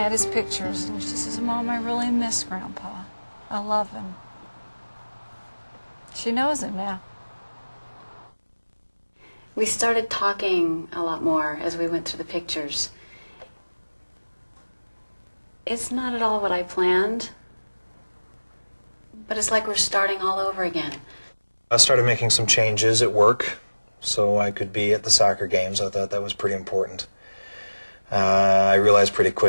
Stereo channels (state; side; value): inverted; both; correlation -1.00